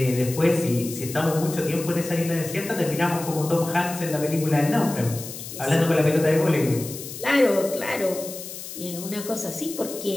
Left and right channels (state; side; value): noise; left; hiss, 11 dB below the sound